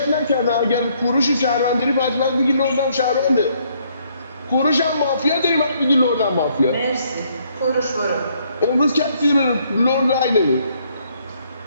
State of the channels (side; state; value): both; inverted; correlation -0.68